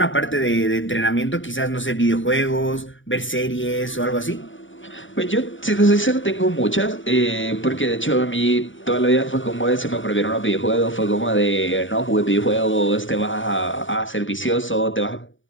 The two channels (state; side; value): late; right; 0.56 ms